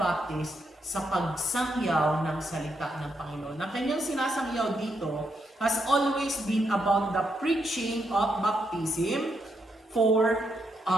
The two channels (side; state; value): both; normal; correlation 0.80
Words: sa pagsangyaw ng salita ng Panginoon. Na kanyang sinasangyaw dito has always been about the preaching of baptism for